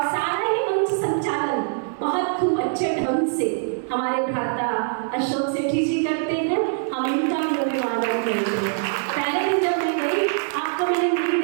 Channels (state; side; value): silent; left; digital silence